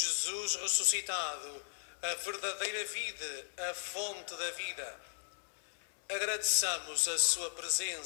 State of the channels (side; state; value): right; silent; 53 dB below the other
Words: ressuscitado, a verdadeira vida, a fonte da vida. Agradeçamos a sua